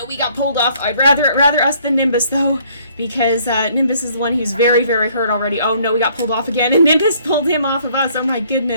we got pulled off. I'd rather us than Nimbus though, because Nimbus is the one who's very, very hurt already. Oh no, we got pulled off again, and Nimbus pulled him off of us. Oh my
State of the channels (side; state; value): both; inverted; correlation -0.62